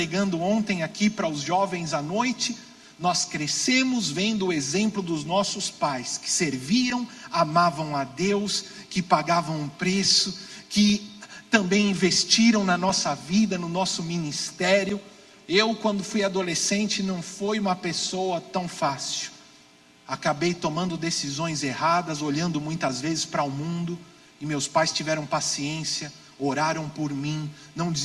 ontem aqui para os jovens à noite. Nós crescemos vendo o exemplo dos nossos pais, que serviam, amavam a Deus, que pagavam um preço, que também investiram na nossa vida, no nosso ministério. Eu, quando fui adolescente, não foi uma pessoa tão fácil. Acabei tomando decisões erradas, olhando muitas vezes para o mundo, e meus pais tiveram paciência, oraram por mim, não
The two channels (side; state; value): both; identical; correlation 1.00